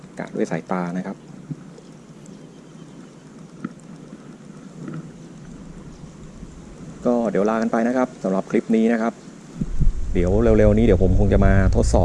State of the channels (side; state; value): both; identical; correlation 1.00